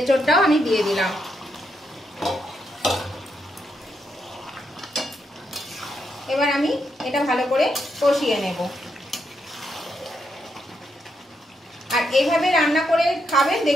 আমি দিয়ে দিলাম। এবার আমি এটা ভালো করে কষিয়ে নেব। আর এইভাবে রান্না করে খাবেন,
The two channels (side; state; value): both; normal; correlation 0.80